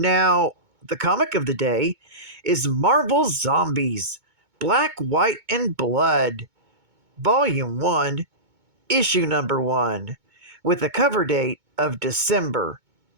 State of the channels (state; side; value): late; left; 2.2 ms